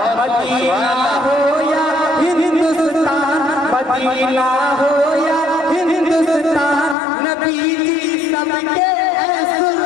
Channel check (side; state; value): right; drops out; at 7.0 s